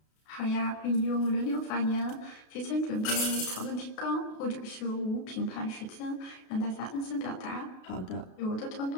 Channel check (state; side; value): late; right; 32 ms